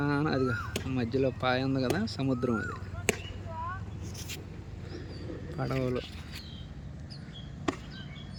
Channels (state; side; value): identical; both; correlation 1.00